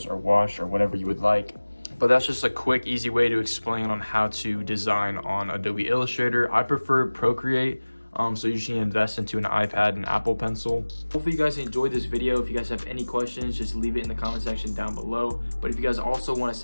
or wash or whatever you would like. But that's just a quick, easy way to explain on how to design on Adobe Illustrator. I prefer Procreate, so you should invest into an iPad and Apple Pencil. Hopefully you guys enjoyed this video. If you guys have any questions, just leave it in the comment section down below. But if you guys also want to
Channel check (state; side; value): inverted; both; correlation -1.00